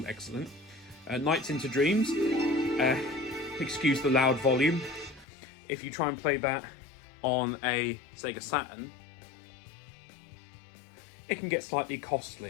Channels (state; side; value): drops out; right; at 5.2 s